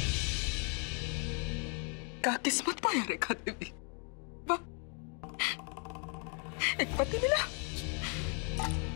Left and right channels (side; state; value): right; quieter; 39.3 dB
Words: क्या किस्मत पाया रेखा देवी, वाह, एक पति मिला